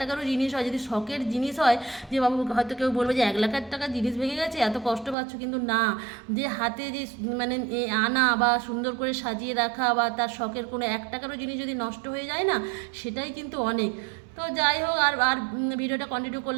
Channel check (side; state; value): left; drops out; at 5.2 s